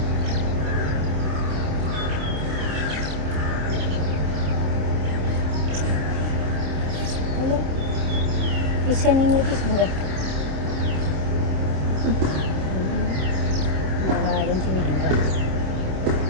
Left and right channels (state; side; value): late; left; 27 ms